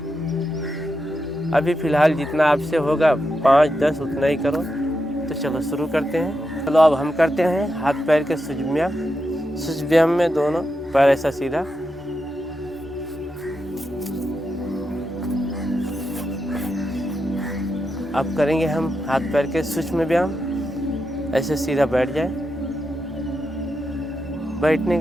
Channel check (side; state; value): both; normal; correlation 0.86